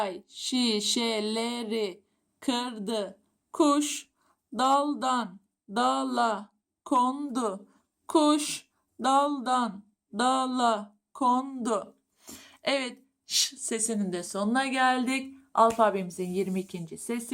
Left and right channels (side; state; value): both; identical; correlation 1.00